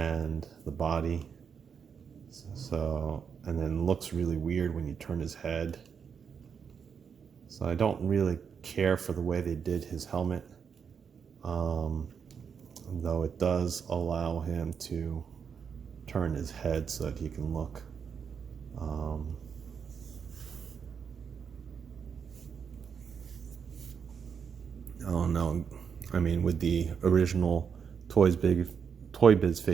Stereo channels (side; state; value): left; quieter; 6.7 dB